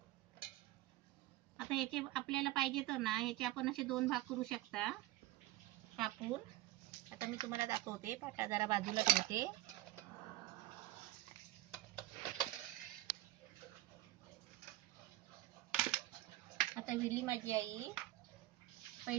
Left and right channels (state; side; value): quieter; left; 17.1 dB